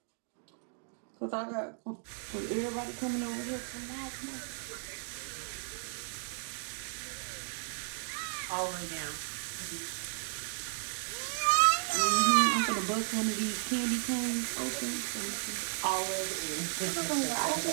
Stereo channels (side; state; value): left; silent; digital silence